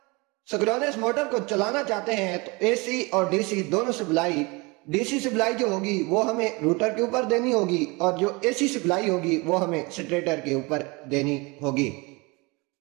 सिंक्रोनस मोटर को चलाना चाहते हैं तो AC और DC दोनों सप्लाई, DC सप्लाई जो होगी वो हमें रूटर के ऊपर देनी होगी और जो AC सप्लाई होगी वो हमें स्टेटर के ऊपर देनी होगी।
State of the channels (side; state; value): left; quieter; 26.5 dB